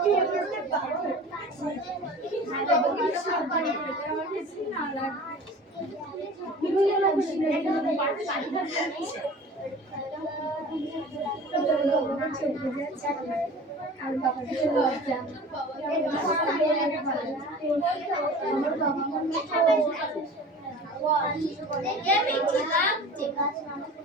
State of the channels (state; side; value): normal; both; correlation 0.40